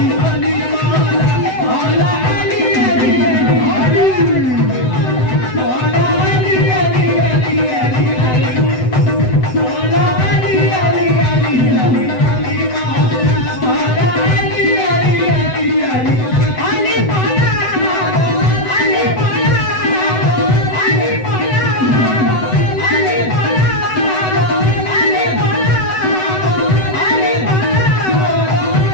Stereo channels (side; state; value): right; late; 7.9 ms